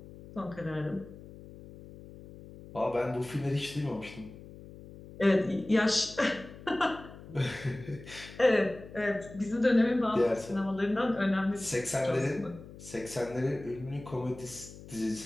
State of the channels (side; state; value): left; noise; hum, 16 dB below the sound